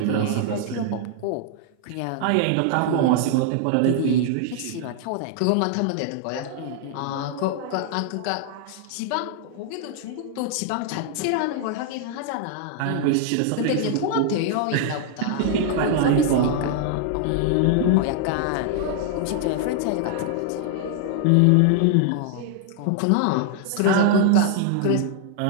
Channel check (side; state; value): both; different; correlation -0.01